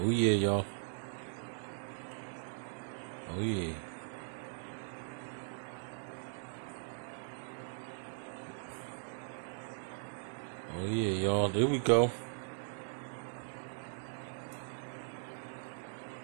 yeah, y'all. Oh yeah. Oh yeah, y'all. There we go.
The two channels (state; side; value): silent; left; digital silence